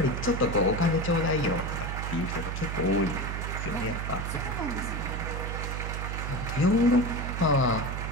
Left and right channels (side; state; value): right; noise; hum, 3 dB below the sound